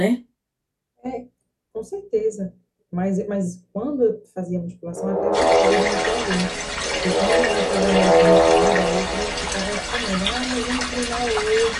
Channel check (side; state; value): both; identical; correlation 1.00